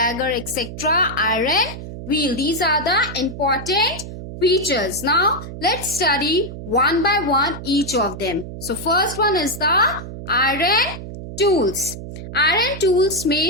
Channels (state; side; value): noise; right; hum, 10 dB below the sound